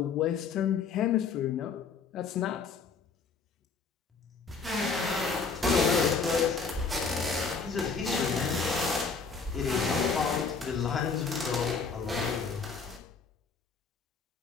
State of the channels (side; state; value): right; quieter; 5.1 dB